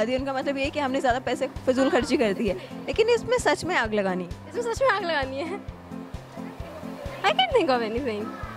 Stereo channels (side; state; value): both; identical; correlation 1.00